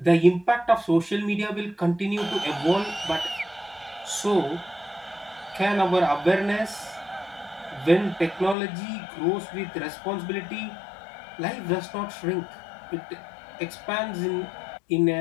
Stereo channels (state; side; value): drops out; right; at 8.6 s